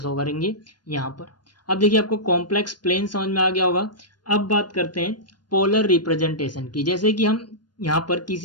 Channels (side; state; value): right; late; 0.71 ms